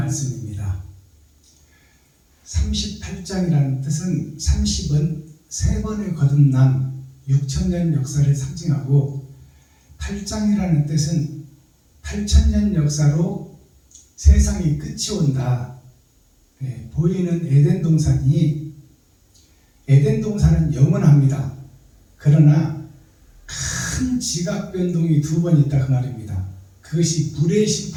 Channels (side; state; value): both; identical; correlation 1.00